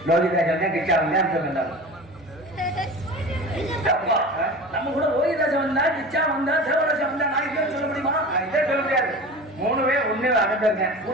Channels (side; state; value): both; normal; correlation 0.34